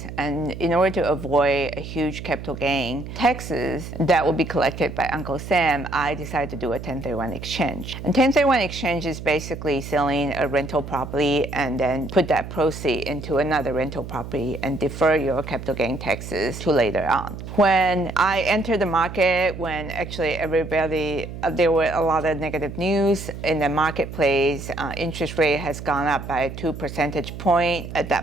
and in order to avoid a huge capital gain taxes that will be collected by Uncle Sam, I decided to do a 1031 exchange. And 1031 exchange is basically selling a rental property and then put that proceed into another rental property and defer your capital gain taxes to later on. When I entered the market, when actually there were a lot of negative news in the marketplace, interest rate has gone up by 2 percentage points. At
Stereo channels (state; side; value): noise; right; hum, 10 dB below the sound